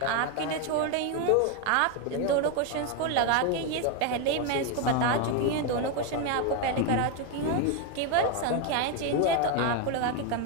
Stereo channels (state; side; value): different; both; correlation 0.01